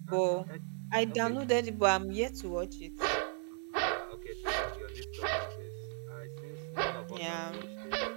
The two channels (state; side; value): silent; left; 54 dB below the other